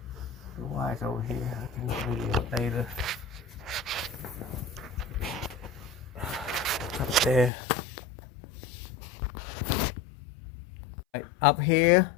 the wire's over here. I can video it later. there. Up here,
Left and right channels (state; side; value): drops out; right; at 7.5 s